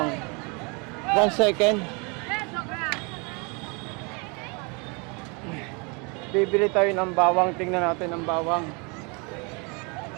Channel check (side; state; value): left; quieter; 31.5 dB